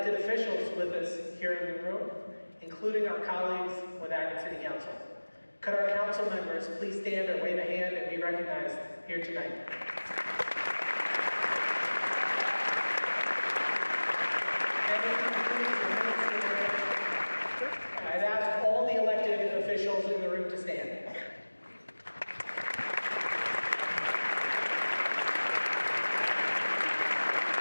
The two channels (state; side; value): inverted; both; correlation -1.00